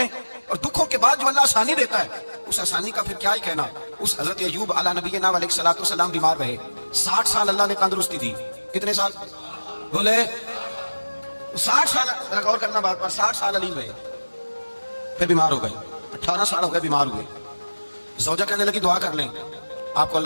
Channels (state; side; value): inverted; both; correlation -1.00